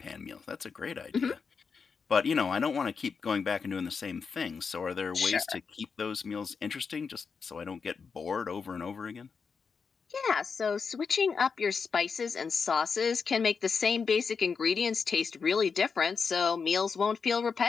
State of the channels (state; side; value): quieter; right; 5.5 dB